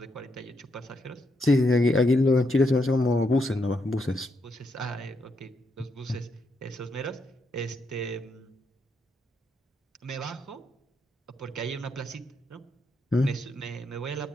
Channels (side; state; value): both; normal; correlation 0.79